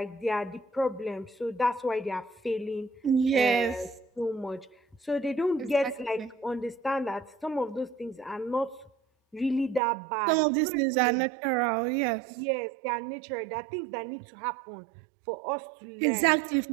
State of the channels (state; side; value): drops out; left; at 9.8 s